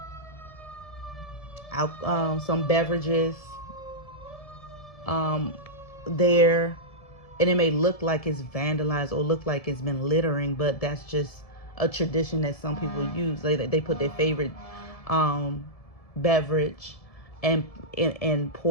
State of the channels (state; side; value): late; right; 1.7 ms